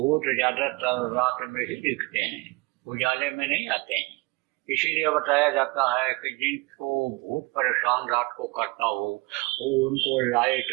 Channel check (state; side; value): quieter; left; 25.5 dB